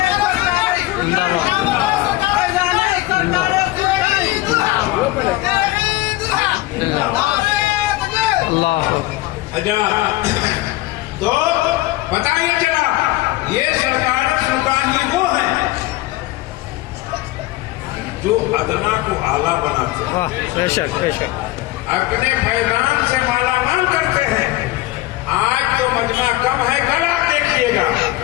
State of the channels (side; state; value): right; quieter; 18.3 dB